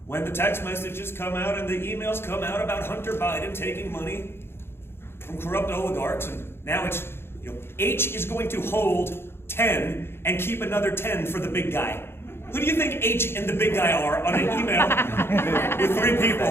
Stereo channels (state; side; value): late; right; 0.11 ms